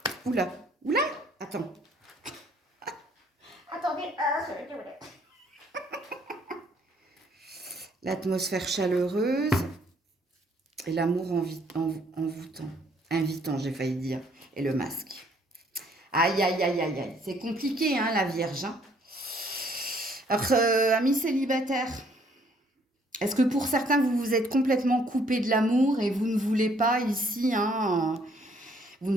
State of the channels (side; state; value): both; normal; correlation 0.64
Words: Oula, oula, attends. Attendez, l'atmosphère chaleureuse et l'amour envoûtant. Invitant, j'ai failli dire. Et le masque. Aïe, aïe, aïe, aïe, aïe. C'est compliqué, hein, la Vierge. Hein. Alors, amis célibataires, est-ce que pour certains, vous vous êtes complètement coupé de l'amour et vous ne voulez pas ici, hein, vous